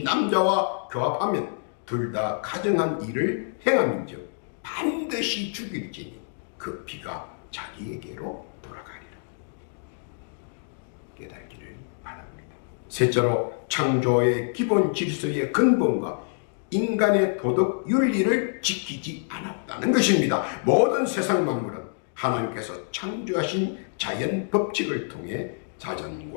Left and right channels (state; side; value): silent; right; digital silence